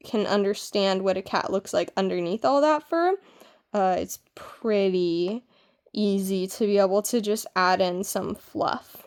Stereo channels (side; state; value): both; identical; correlation 1.00